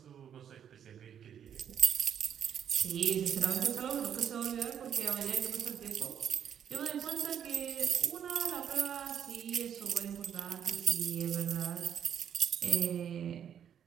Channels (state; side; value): quieter; left; 8.9 dB